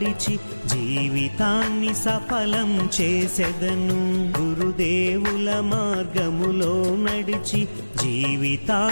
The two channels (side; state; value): both; inverted; correlation -1.00